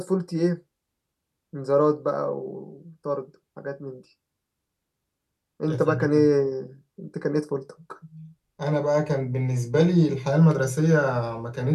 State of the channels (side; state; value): both; identical; correlation 1.00